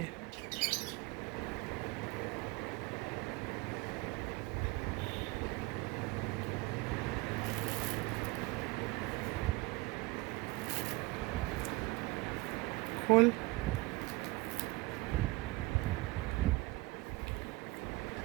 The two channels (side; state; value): left; quieter; 22.7 dB